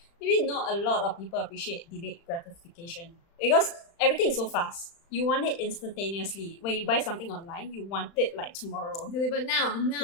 Maybe not a lot of people appreciate delayed gratification because everything is so fast. You want it instantaneously. When you buy something online, you want it like tomorrow. Delivered now,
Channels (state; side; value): late; right; 35 ms